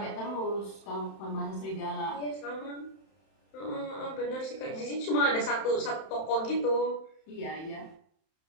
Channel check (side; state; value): right; late; 31 ms